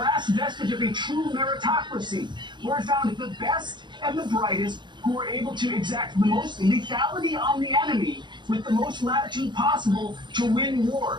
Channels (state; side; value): late; left; 0.22 ms